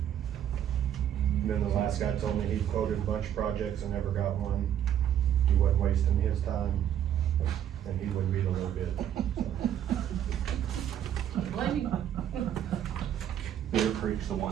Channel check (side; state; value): left; quieter; 10.3 dB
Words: And then the last guy told me he quoted a bunch of projects and never got one. He wasn't wasting his time, and he wouldn't beat a little bit. Blame you. Bitter Creek's the